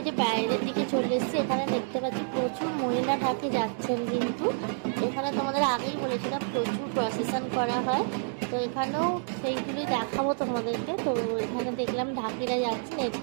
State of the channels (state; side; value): silent; left; digital silence